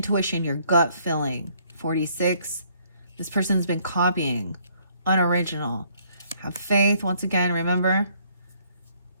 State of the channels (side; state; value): both; inverted; correlation -0.65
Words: your gut feeling. 46. This person's been copying. Unoriginal. Have faith. Once again, remember,